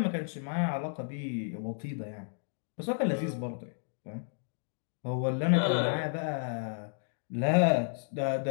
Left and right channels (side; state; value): right; silent; digital silence